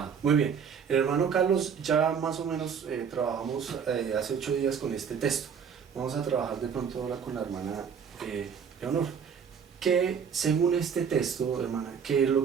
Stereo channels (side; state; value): left; quieter; 6.9 dB